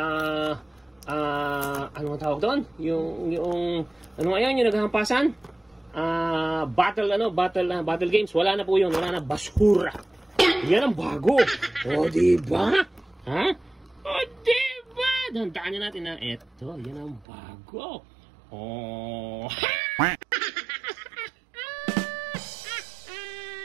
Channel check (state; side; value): drops out; left; at 17.2 s